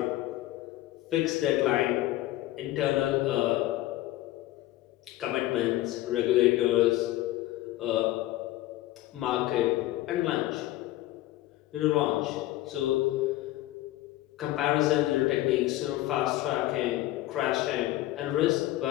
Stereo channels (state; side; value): quieter; right; 15.8 dB